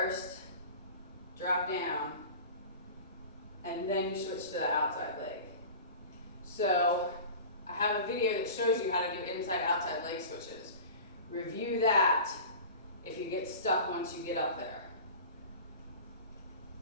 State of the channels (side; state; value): both; inverted; correlation -0.35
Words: drop down, and then you switch to the outside leg. So I have a video that shows you how to do inside-outside leg switches. Review that if you get stuck once you get up there.